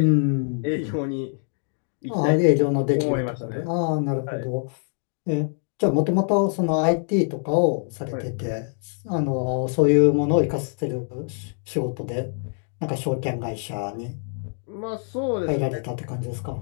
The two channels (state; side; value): silent; right; 55 dB below the other